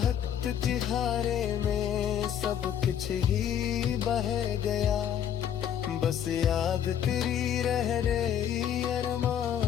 तिहारे में सब कुछ ही बह गया, बस याद तेरी रह रही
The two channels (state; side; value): quieter; right; 9.4 dB